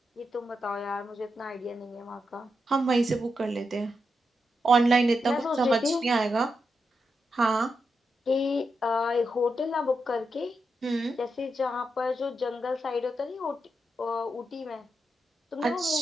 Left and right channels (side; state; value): both; normal; correlation 0.85